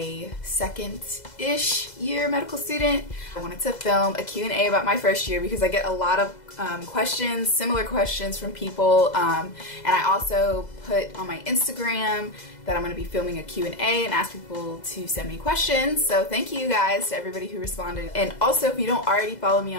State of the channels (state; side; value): late; right; 2.0 ms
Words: second-ish year medical student. I wanted to film a Q&A about my first year because I get a lot of questions, similar questions from people, and I also put on my Instagram that I'm going to be filming a Q&A and ask people to send me questions. So thank you guys to everybody who responded. And also, if you don't already follow me